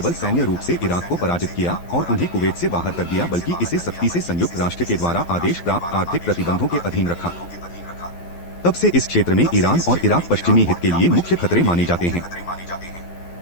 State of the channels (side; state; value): right; late; 12 ms